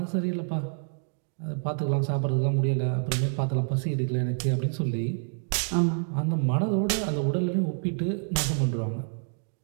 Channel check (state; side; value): silent; left; 60 dB below the other